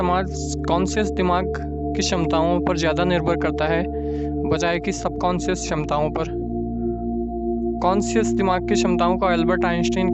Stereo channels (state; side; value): identical; both; correlation 1.00